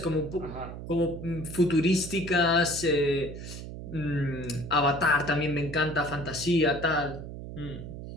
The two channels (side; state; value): right; noise; hum, 10 dB below the sound